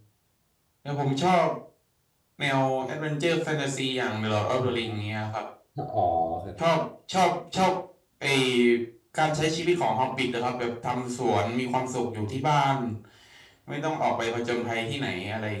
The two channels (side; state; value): both; identical; correlation 1.00